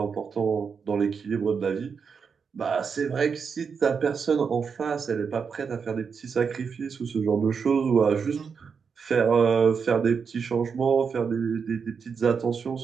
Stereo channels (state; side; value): quieter; left; 6.0 dB